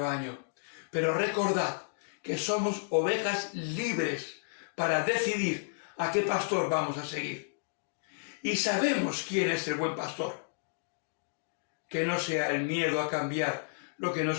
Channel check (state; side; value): silent; right; digital silence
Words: pero recordad que somos ovejas libres para decidir a qué pastor vamos a seguir. Y sabemos quién es el buen pastor. Que no sea el miedo a cambiar lo que